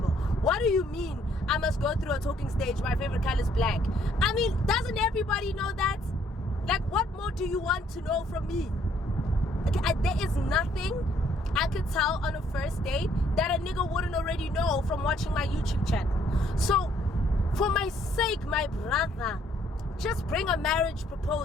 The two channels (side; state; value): both; normal; correlation 0.66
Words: What do you mean I must go through a talking stage? My favorite color is black. I mean, doesn't everybody know that? Like, what more do you want to know from me? There is nothing I could tell on a first date that a nigga wouldn't already know from watching my YouTube channel. So for my sake, my brother, just bring a marriage